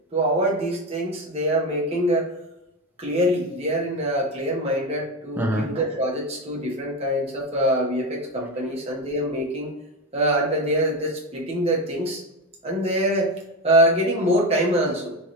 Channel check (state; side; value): normal; both; correlation 0.17